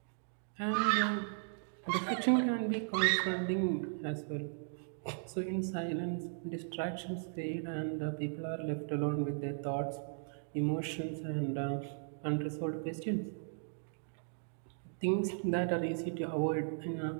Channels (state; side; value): silent; left; digital silence